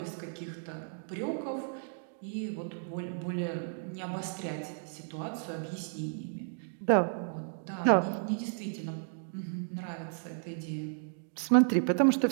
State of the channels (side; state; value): left; silent; digital silence